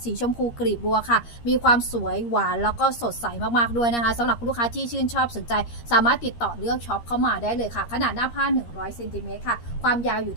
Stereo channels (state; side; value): late; right; 13 ms